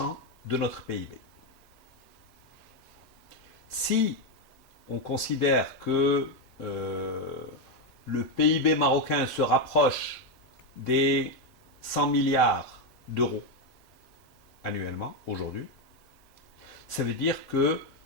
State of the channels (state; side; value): normal; both; correlation 0.06